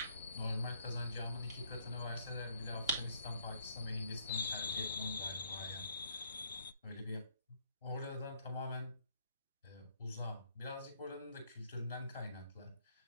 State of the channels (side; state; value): both; inverted; correlation -0.68